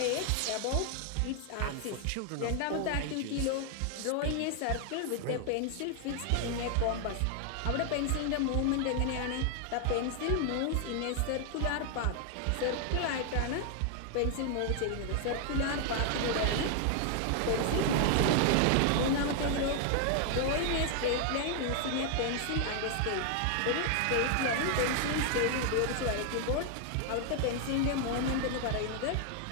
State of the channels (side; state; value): both; different; correlation 0.00